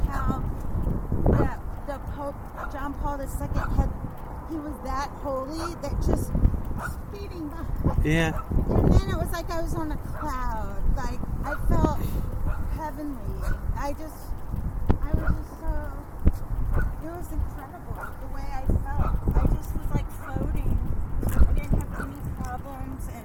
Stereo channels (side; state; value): both; identical; correlation 1.00